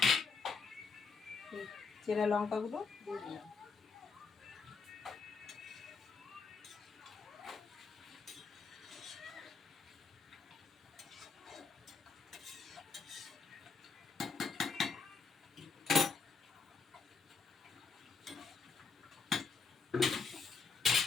চেরা লঙ্কাগুলো দিয়ে দিলাম।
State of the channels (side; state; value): right; quieter; 4.8 dB